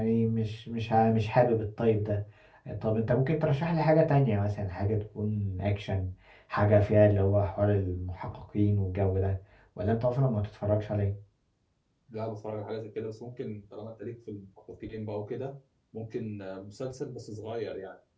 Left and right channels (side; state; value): both; identical; correlation 1.00